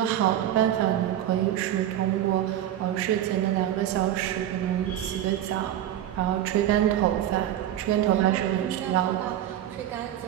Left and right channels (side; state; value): left; quieter; 11.8 dB